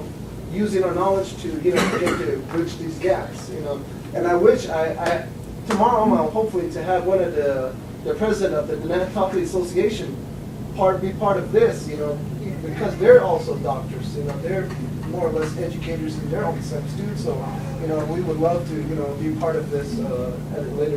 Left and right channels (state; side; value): identical; both; correlation 1.00